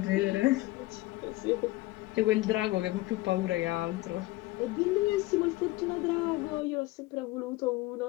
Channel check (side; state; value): right; quieter; 19.3 dB